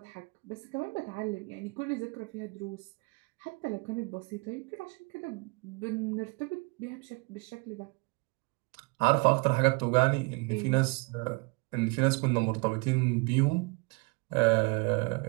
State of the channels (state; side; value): quieter; left; 30.2 dB